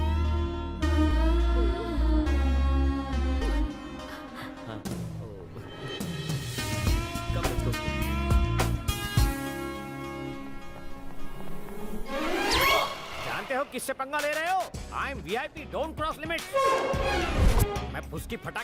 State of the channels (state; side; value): identical; both; correlation 1.00